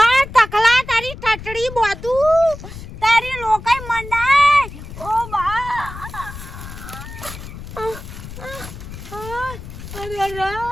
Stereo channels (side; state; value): left; noise; rumble, 12 dB below the sound